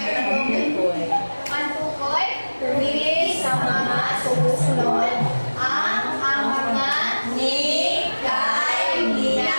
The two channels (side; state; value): both; inverted; correlation -1.00